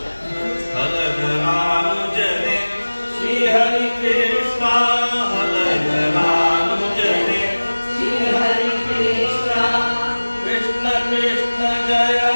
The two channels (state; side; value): inverted; both; correlation -1.00